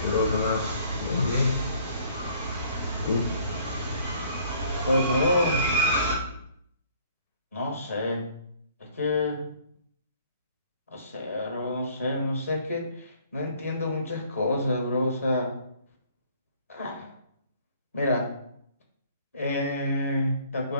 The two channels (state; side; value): inverted; both; correlation -0.58